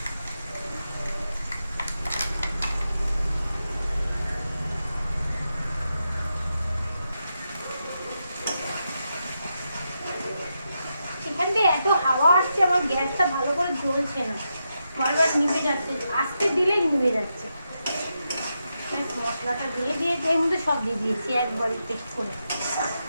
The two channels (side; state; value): both; inverted; correlation -0.86